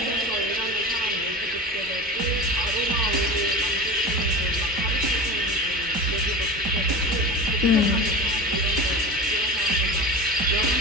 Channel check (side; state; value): both; normal; correlation 0.30